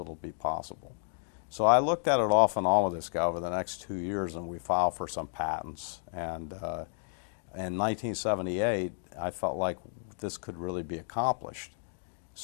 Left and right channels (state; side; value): silent; right; digital silence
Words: be possible. So I looked at it off and on with this guy over the next 2 years, and we filed for some patents. And in 1978, I felt like this could really be accomplished.